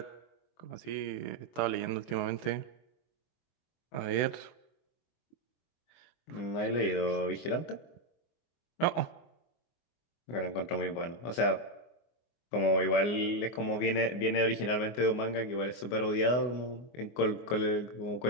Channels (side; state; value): right; late; 24 ms